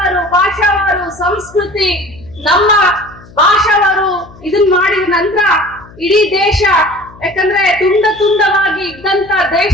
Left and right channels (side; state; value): left; noise; hum, 22 dB below the sound